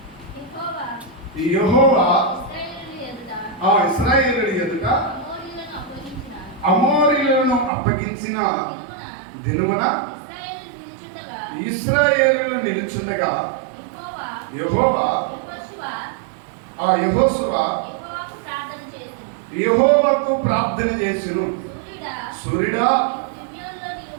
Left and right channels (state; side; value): drops out; left; at 7.7 s